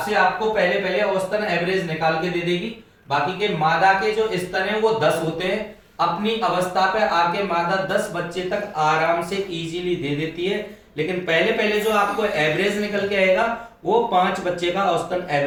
से आपको पहले औसतन एवरेज निकाल के दे देगी। बाकी के मादा के जो स्तन है वो 10 होते हैं। अपनी अवस्था पे आके मादा 10 बच्चे तक आराम से इजीली दे देती है। लेकिन पहले जो आपको एवरेज निकल के आएगा वो 5 बच्चे का औसतन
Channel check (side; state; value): both; identical; correlation 1.00